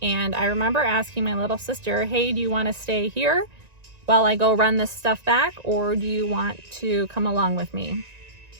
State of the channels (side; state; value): left; late; 1.9 ms